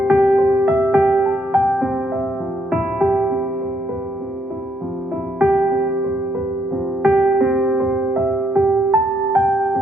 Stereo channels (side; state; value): both; normal; correlation 0.74